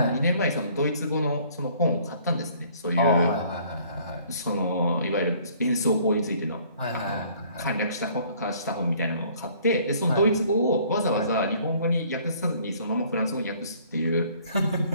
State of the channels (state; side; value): inverted; both; correlation -0.58